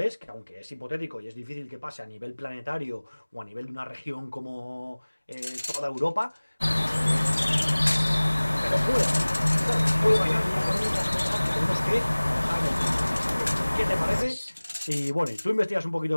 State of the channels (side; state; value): both; inverted; correlation -1.00